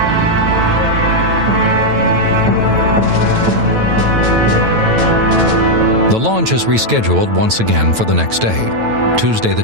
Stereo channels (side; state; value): left; late; 9.1 ms